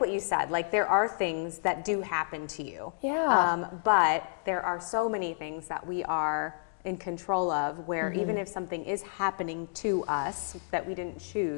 you said, like there are things that do happen to you, but there are so many things that we are in control of, where even if something is happening to us that we didn't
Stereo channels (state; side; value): silent; right; digital silence